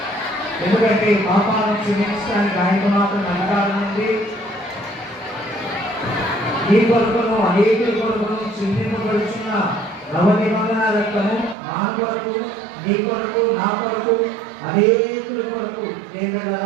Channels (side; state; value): left; drops out; at 11.6 s